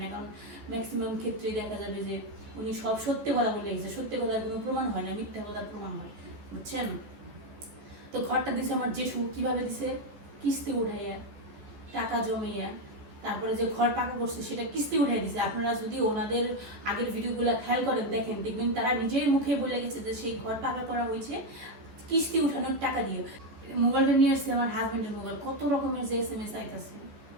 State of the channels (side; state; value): left; late; 14 ms